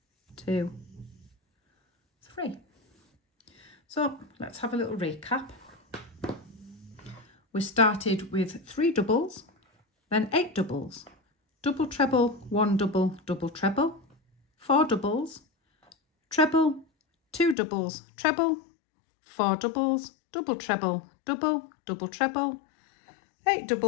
2, 3. So let's have a little recap. We started with 3 doubles, then 8 doubles, double treble, 1 double, double treble, 4 doubles, treble, 2 doubles, treble, 4 doubles, double treble, double, double treble, 8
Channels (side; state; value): right; drops out; at 17.6 s